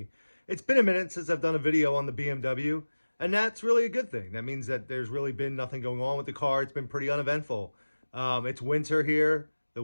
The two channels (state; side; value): inverted; both; correlation -1.00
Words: It's been a minute since I've done a video on the BMW, and that's really a good thing. That means that there's really been nothing going on with the car. It's been pretty uneventful. It's winter here. The